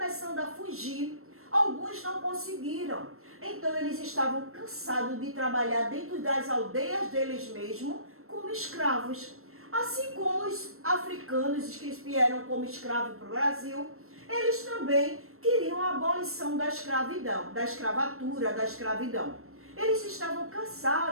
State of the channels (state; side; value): late; left; 0.62 ms